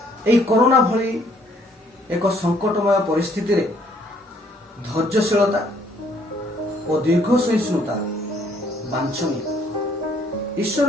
ଏହି କରୋନା ଭଳି ଏକ ସଙ୍କଟମୟ ପରିସ୍ଥିତିରେ ଧୈର୍ଯ୍ୟଶୀଳତା ଓ ଦୀର୍ଘ ସହିଷ୍ଣୁତା ବାଞ୍ଛନୀୟ।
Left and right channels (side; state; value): both; normal; correlation 0.64